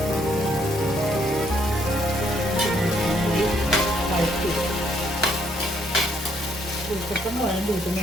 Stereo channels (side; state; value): both; normal; correlation 0.69